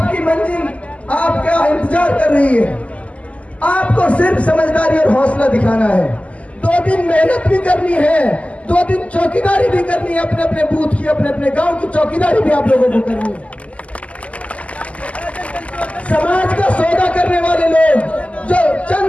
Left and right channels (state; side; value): late; right; 0.066 ms